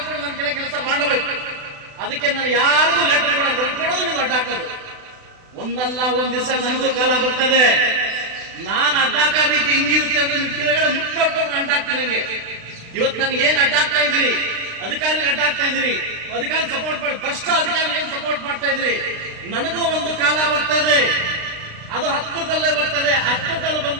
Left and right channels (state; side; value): late; left; 36 ms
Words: ಕೂಡ ನನ್ನ ಕೆಳಗೆ ಕೆಲಸ ಮಾಡಬೇಕು. ಅದಕ್ಕೆ ನಾನು ಯಾರಿಗೂ ಲೆಟರ್ ಕೊಡೋದು ನೀವು ಅಡ್ಡ ಹಾಕೋದು. ಒಂದಲ್ಲ ಒಂದ್ ದಿವಸ ನನಗೂ ಕಾಲ ಬರ್ತದೆ. ನಾನು ಅಡ್ಡಾಕ ರೀತಿ ಹಿಂಗಿರುತ್ತೆ ಅಂದ್ರೆ ನಿಮ್ ಕೆಳಗಡೆ ಮುಟ್ಟು ನೋಡ್ಕೊಂಡು ಅಡ್ಡಾಕ್ತೀನಿ. ನನಗೆ ಇವತ್ತು ನನಗೆ ಏನ್ ಅಡ್ಡಾಕ್ತಾ ಇದ್ದೀರಿ, ಅಧಿಕಾರಿ ಅಡ್ಡಾಕ್ತಾ ಇದ್ದೀರಿ, ಅಧಿಕಾರಿ ಸಪೋರ್ಟ್ ಮಾಡಿ ಭ್ರಷ್ಟ ಅಧಿಕಾರಿ ಏನ್ ಸಪೋರ್ಟ್ ಮಾಡ್ತಾ ಇದ್ರಿ. ನನಗೂ ಒಂದು ಕಾಲ ಬರ್ತದೆ, ಅದು ಹತ್ತಿರದಲ್ಲೇ ಬರ್ತದೆ. ಹತ್ತಿರದಲ್ಲಿ